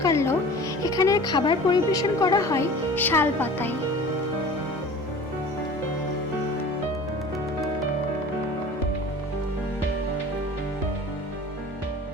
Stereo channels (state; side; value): normal; both; correlation 0.41